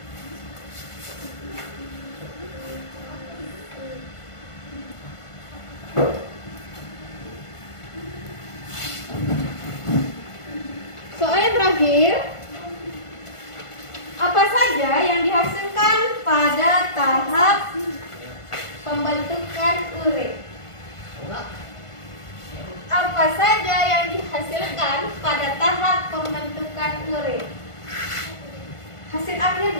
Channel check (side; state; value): right; late; 1.5 ms